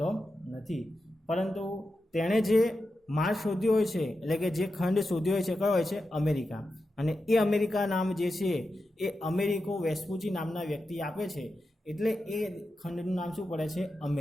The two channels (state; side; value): normal; both; correlation 0.90